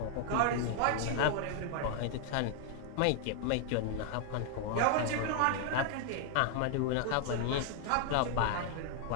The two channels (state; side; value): different; both; correlation 0.00